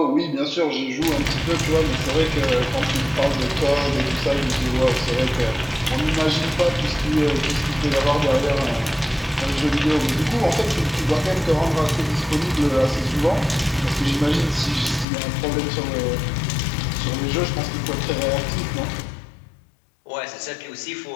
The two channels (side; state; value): right; drops out; at 15.1 s